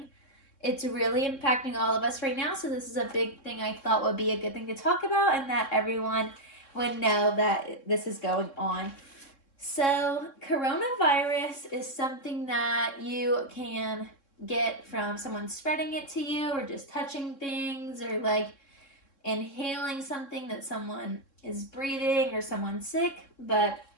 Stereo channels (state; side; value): late; right; 3.7 ms